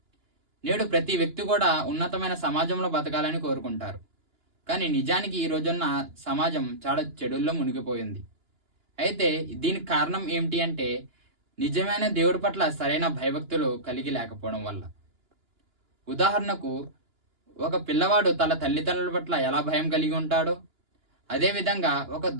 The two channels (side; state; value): left; late; 2.9 ms